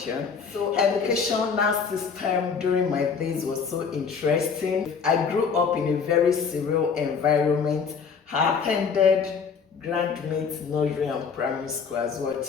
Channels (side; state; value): right; quieter; 6.0 dB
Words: So educational system during my days was so interesting. I grew up in a very surreal environment. I attended Grandmate Nursery and Primary School as well,